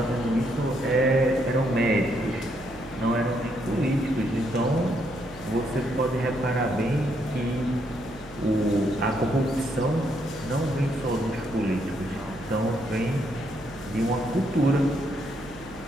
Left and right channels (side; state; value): right; noise; hum, 18 dB below the sound